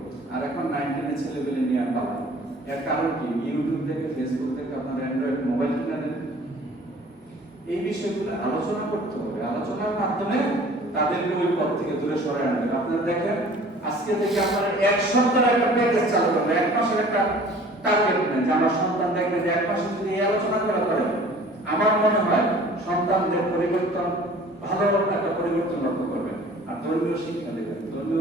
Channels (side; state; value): both; normal; correlation 0.48